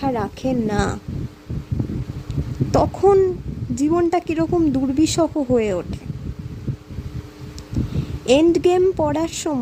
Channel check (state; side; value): identical; both; correlation 1.00